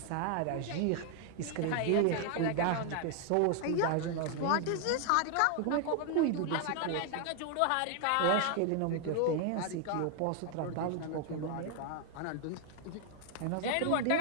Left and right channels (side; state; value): both; different; correlation 0.00